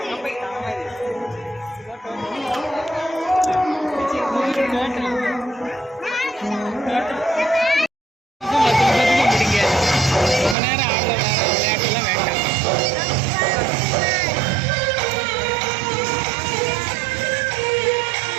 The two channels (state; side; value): drops out; left; at 10.6 s